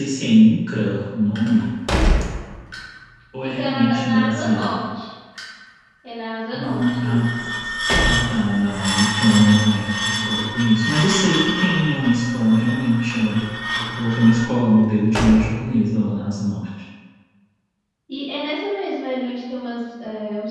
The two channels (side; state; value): both; identical; correlation 1.00